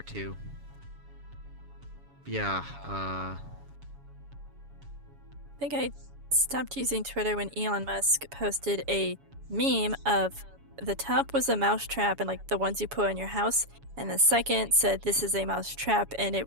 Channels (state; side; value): late; left; 7.1 ms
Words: too. Yeah. I think I stopped using Twitter when Elon Musk posted a meme of the top was a mouse trap and like the ones you put on your house, and the second said this is a mouse trap and it